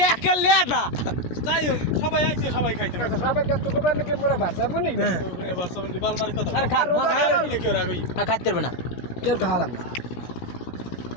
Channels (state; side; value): late; right; 17 ms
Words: একা লেদা যাই হোক সবাই আইছে সবাই খাইতে সবাই কত কোবার নাকি মোরা ভাষা বলি না। বারসাবন্দি বালমার কথা আরে খা কেউ রাগই খাইতে পারবে না, কেউ খাওয়ালাম না।